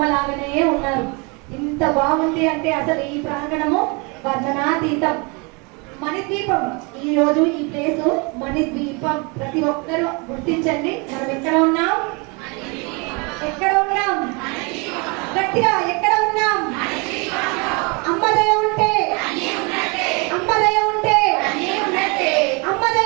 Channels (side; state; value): left; quieter; 30.6 dB